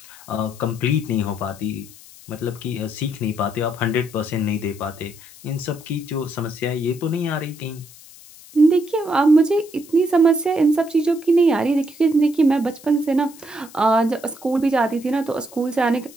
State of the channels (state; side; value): noise; left; hiss, 21 dB below the sound